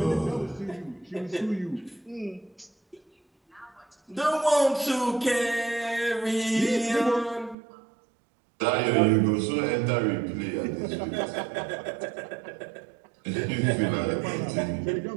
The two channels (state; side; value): drops out; left; at 7.6 s